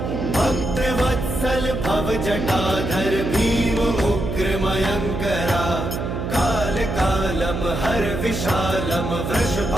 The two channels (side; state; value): right; noise; hum, 4 dB below the sound